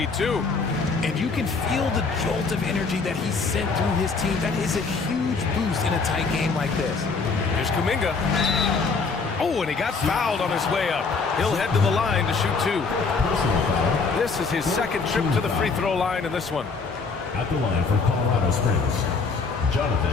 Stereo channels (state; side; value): quieter; right; 4.6 dB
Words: too. And you can feel the jolt of energy that he sent through his team. That is a huge boost in a tight game like this. Here's Kuminga. Oh, and he got fouled on his way up. He'll head to the line to shoot 2. This is his second trip to the free throw line in this one. At the line for Colorado Springs,